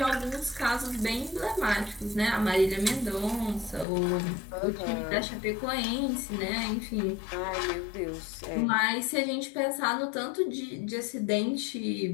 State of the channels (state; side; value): drops out; right; at 3.9 s